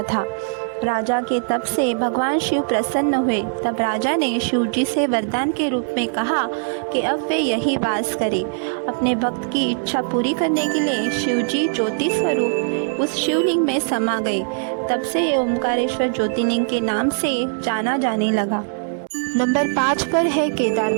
था। राजा के तप से भगवान शिव प्रसन्न हुए। तब राजा ने शिव जी से वरदान के रूप में कहा कि अब वे यही वास करें। अपने भक्त की इच्छा पूरी करने के लिए शिव जी ज्योति स्वरूप उस शिवलिंग में समा गए। तब से ये ओमकारेश्वर ज्योतिर्लिंग के नाम से जाना जाने लगा। नंबर 5 पर है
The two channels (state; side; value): silent; left; digital silence